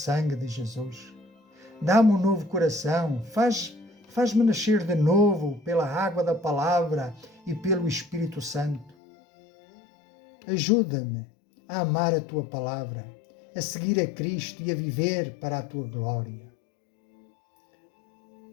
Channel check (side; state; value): right; drops out; at 9.0 s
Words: de Jesus. Dá-me um novo coração, faz-me nascer de novo pela água da palavra e pelo Espírito Santo. Ajuda-me a amar a Tua palavra, a seguir a Cristo e a viver para a Tua glória.